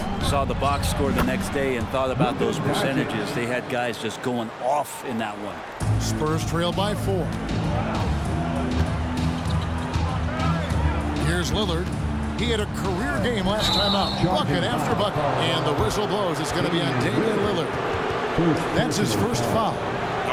Saw the box score the next day and thought about those percentages. They had guys just going off in that one. Spurs trail by 4. Here's Lillard. He had a career game last time out. Bucket after bucket. And the whistle blows. It's going to be on Damian Lillard. That's his first foul.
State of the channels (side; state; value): both; identical; correlation 1.00